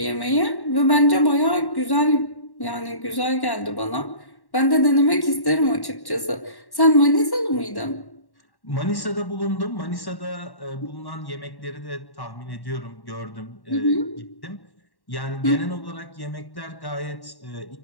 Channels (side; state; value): right; late; 1.1 ms